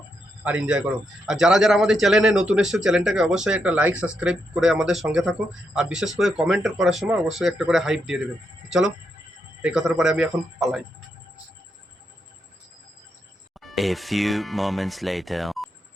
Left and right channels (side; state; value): both; normal; correlation 0.81